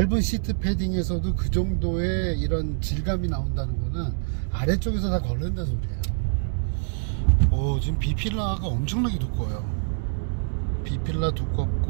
시트 패딩에서도 그 정도의 이런 질감이 나온다는 거는 아래쪽에서 다 걸른다는 소리예요. 지금 B필라가 엄청나게 두꺼워요. B필라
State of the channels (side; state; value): left; silent; digital silence